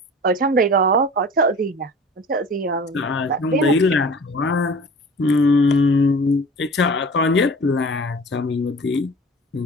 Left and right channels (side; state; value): both; normal; correlation 0.42